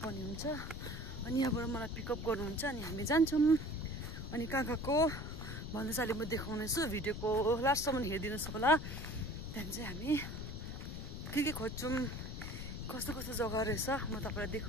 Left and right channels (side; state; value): left; noise; rumble, 7 dB below the sound